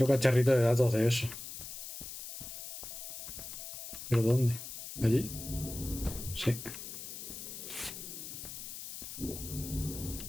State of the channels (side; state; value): left; noise; hiss, 9 dB below the sound